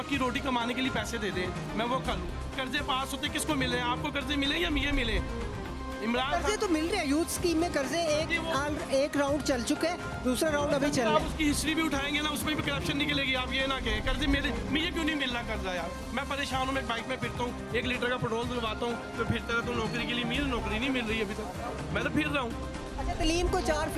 की रोटी कमाने के लिए पैसे दे दें, मैं वो कर लूँ। कर्जे पास होते किसको मिले? आपको कर्जे मिले या ये मिले? इमरान कर्जे तो मिल रहे हैं, यूथ स्कीम में कर्जे एक राउंड चल चुका है, दूसरा राउंड अभी चल रहा है। उसकी हिस्ट्री भी उठाएंगे ना, उसमें भी करप्शन निकलेगी। आप ये ना कहें कर्जे मुझे क्यों नहीं मिल रहा कर्जा यार, मैं परेशान हूँ। मैं बाइक में फिरता हूँ, 1 लीटर का पेट्रोल दिलवाता हूँ तो फिरता रहता हूँ नौकरी के लिए। मेरी नौकरी नहीं मिल रही अभी तक, मैं तो फिर रहा हूँ। तलीम को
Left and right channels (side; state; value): both; identical; correlation 1.00